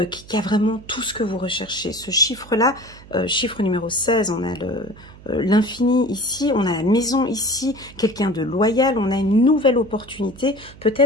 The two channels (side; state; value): right; noise; hum, 20 dB below the sound